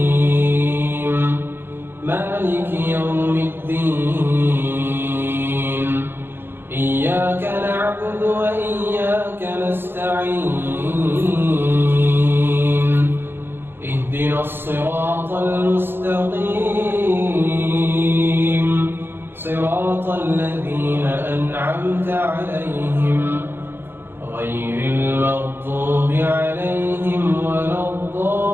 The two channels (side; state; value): left; late; 0.10 ms